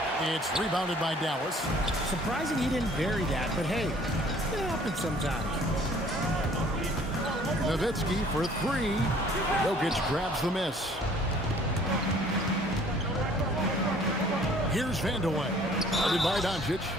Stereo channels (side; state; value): both; normal; correlation 0.55